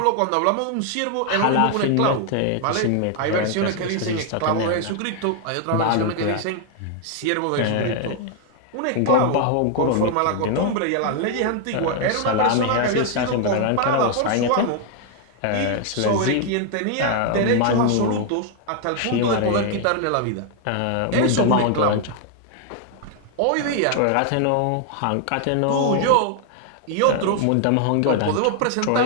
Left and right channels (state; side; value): different; both; correlation 0.00